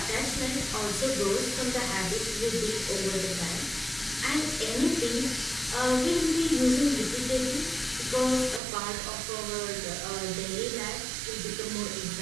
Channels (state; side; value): drops out; left; at 8.6 s